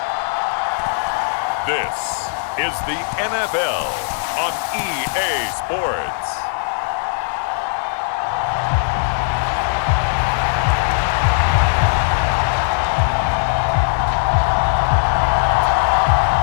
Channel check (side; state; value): right; silent; 67 dB below the other